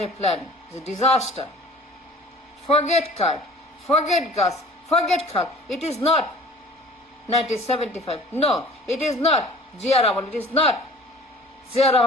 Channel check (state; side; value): normal; both; correlation 0.47